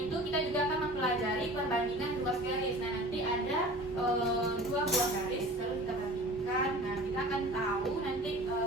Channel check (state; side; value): normal; both; correlation 0.41